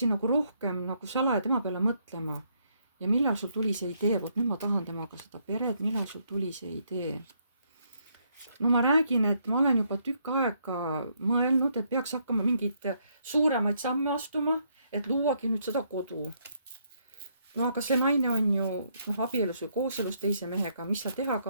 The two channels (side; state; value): both; inverted; correlation -0.72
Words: nagu rohkem nagu salaja tema peale mõtlema. ja millal sul tuli see idee, vot nüüd ma tahan temaga seda peret, millal sul tuli see idee? no ma räägin, et ma olen juba tükk aega mõelnud, et peaks hakkama mingeid suuremaid samme astuma, et luuagi nüüd seda kodu. no aga see naine on ju abielus või kooselus teise mehega, mis sa teha